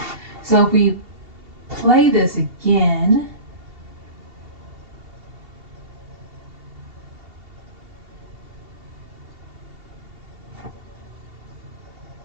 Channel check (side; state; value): left; late; 2.8 ms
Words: So if we play this again,